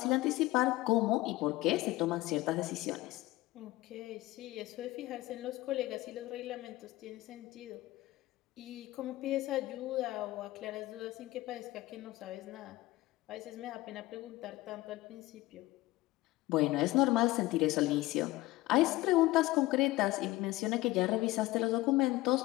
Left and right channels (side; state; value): right; quieter; 18.5 dB